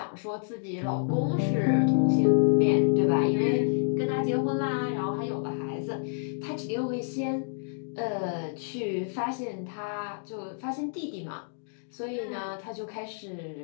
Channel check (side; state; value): right; silent; digital silence